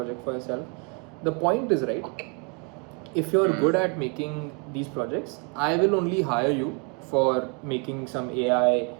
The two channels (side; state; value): left; quieter; 33.5 dB